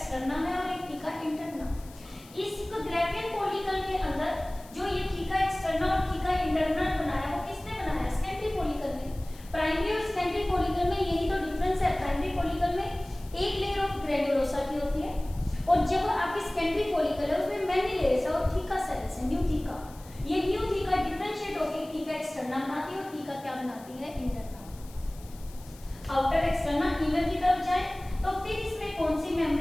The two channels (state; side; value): noise; left; hiss, 22 dB below the sound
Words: है और एक थीका इंटरना। इस ग्राफियन फॉलिकल के अंदर जो ये थीका एक्सटर्ना और थीका इंटरना बनाया वो किसने बनाया, सेकेंडरी फॉलिकल ने। प्राइमरी और सेकेंडरी फॉलिकल में यही तो डिफरेंस है, प्राइमरी फॉलिकल में एक लेयर ऑफ ग्रेन्युलोसा की होती है और जब आपकी सेकेंडरी फॉलिकल है उसमें मैनी लेयर्स है और थीका सेल्स है, न्यू थीका। ये न्यू थीका डिफरेंशिएट होकर थीका एक्सटर्ना बनाती है और थीका क्या बनाती है, इंटरना। आउटर एक्सटर्ना इनर की तरफ जाए तो फिर इसमें कौन सी